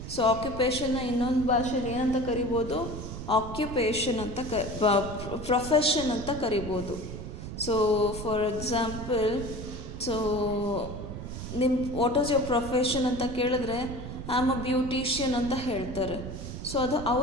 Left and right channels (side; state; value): right; noise; rumble, 8 dB below the sound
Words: So ಆಕ್ಯುಪೇಷನ್ನ ಇನ್ನೊಂದು ಭಾಷೆಯಲ್ಲಿ ಏನಂತ ಕರಿಬೋದು? ಆಕ್ಯುಪೇಷನ್ ಅಂತ ಪ್ರೊಫೆಷನ್ ಅಂತ ಕರಿಬೋದು. So for example, so what is your profession ಅಂತ ಕೇಳಿದ್ರೆ ಐ ಆಮ್ ಅ ಬ್ಯೂಟಿಷಿಯನ್ ಅಂತ ಹೇಳ್ತಾರೆ. ಸೊ ಅದು